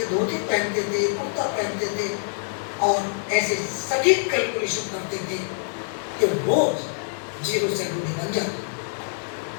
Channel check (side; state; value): right; silent; digital silence